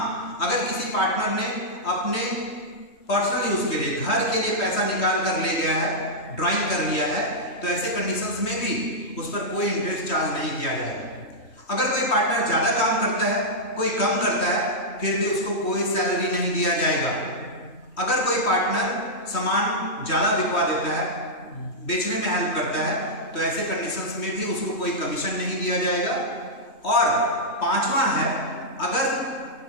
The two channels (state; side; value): late; right; 3.2 ms